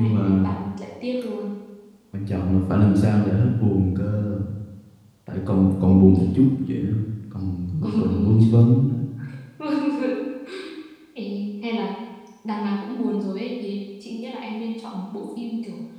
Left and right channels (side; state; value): both; identical; correlation 1.00